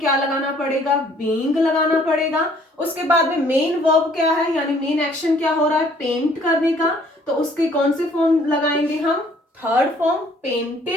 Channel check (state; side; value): normal; both; correlation 0.60